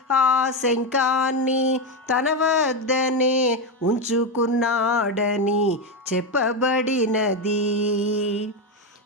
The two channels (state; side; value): normal; both; correlation 0.10